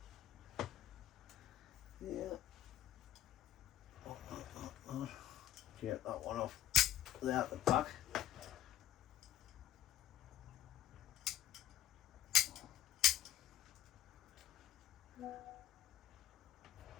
Yeah. Get that one off there at the back.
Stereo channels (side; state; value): right; quieter; 12.6 dB